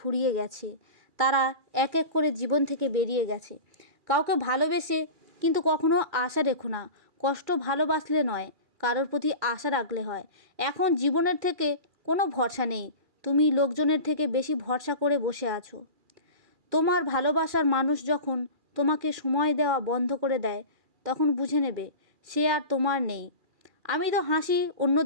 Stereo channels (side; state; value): left; late; 2.4 ms